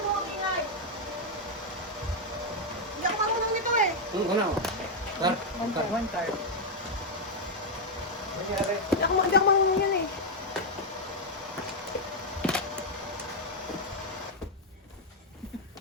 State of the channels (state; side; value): normal; both; correlation 0.00